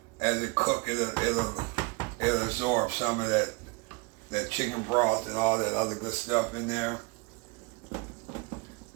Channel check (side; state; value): left; quieter; 28.0 dB